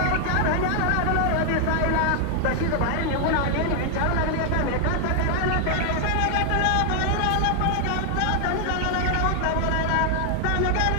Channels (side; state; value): both; different; correlation 0.00